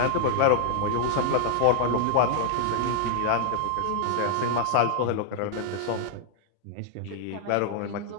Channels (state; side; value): different; both; correlation -0.01